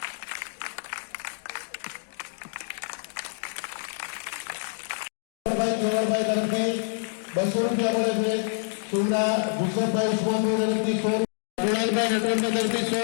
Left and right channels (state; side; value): silent; right; digital silence